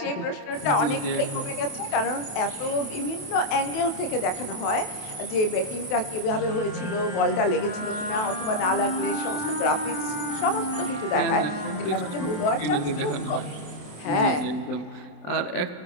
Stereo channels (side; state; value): right; late; 28 ms